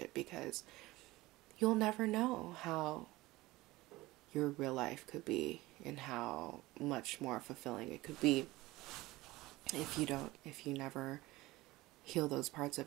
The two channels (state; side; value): quieter; left; 19.4 dB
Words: because you'll never know how your real life could be and how much more fulfilling it could be if you never heal those parts